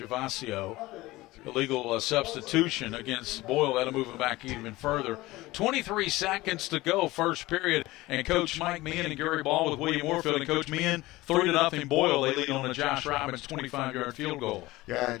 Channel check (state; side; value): quieter; right; 19.1 dB